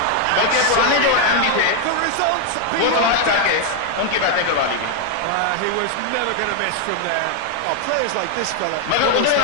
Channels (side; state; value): both; different; correlation 0.00